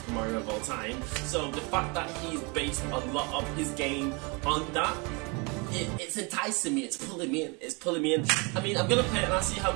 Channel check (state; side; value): quieter; left; 30.1 dB